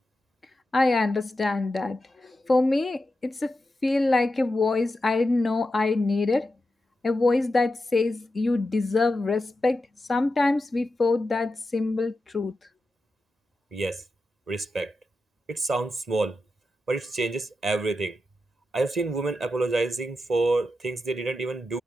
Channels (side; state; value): both; normal; correlation 0.90